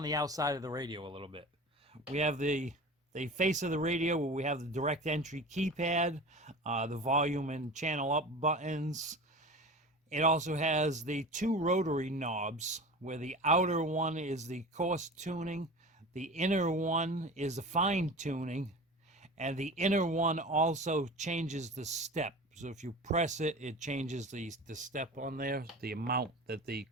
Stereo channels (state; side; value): normal; both; correlation 0.34